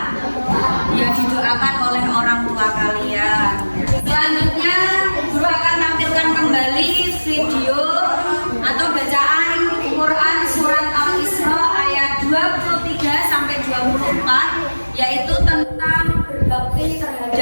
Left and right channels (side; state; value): both; inverted; correlation -1.00